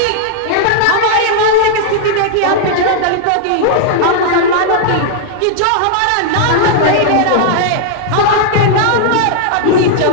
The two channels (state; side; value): different; both; correlation -0.01